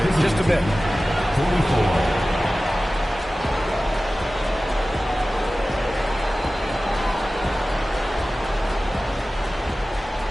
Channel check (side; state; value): both; normal; correlation 0.96